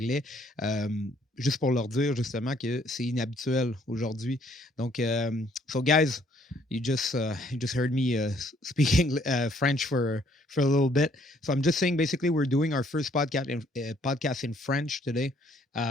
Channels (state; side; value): normal; both; correlation 0.65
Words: Juste pour leur dire justement que c'est inhabituel aujourd'hui. Donc, so guys, you just heard me speaking French for a little bit. So I'm just saying, basically, we're doing our first podcast in French today